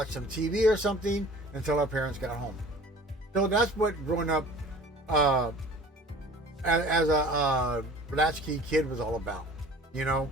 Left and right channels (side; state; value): both; normal; correlation 0.46